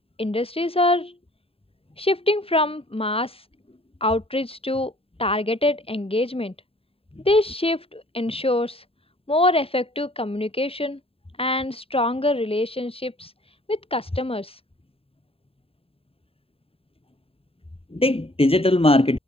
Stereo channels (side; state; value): right; late; 0.27 ms